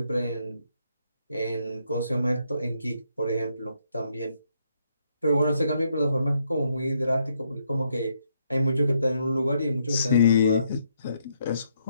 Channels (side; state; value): both; inverted; correlation -0.75